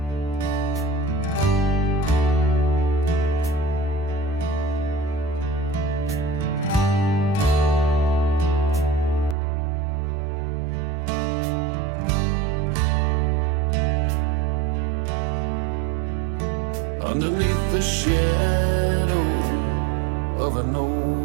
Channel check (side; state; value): left; drops out; at 9.3 s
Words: Underneath the shadow of an